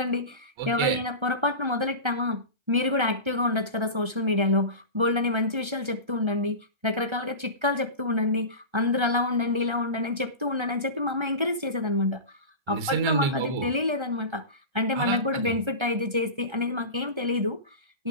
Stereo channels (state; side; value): late; left; 1.3 ms